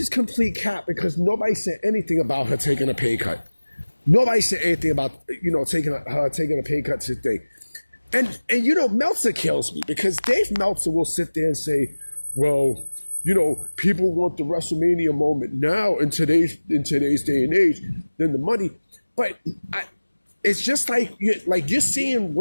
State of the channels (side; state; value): both; inverted; correlation -1.00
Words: complete cap because nobody said anything about her taking a pay cut. Nobody said anything about, taking a pay cut today. And Meltzer kills me because Dave Meltzer will sit there and say, well, people want the WrestleMania moment now in today's day and age than the money. But it's just like you're seeing